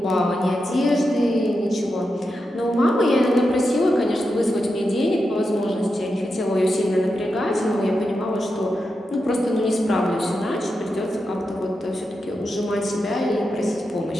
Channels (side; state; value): both; normal; correlation 0.88